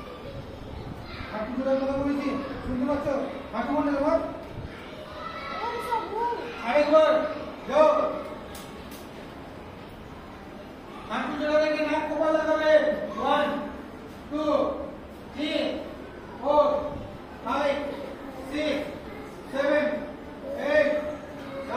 হাঁটু জোড়ার কথা বলেছি, শুনতে পাচ্ছ? হাঁটু মনে তোমার আরেকবার যাও। হাঁটু জোড়া রেখে নাক কপাল লাগাবে। 1 2 3 4 5 6 7 8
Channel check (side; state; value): both; identical; correlation 1.00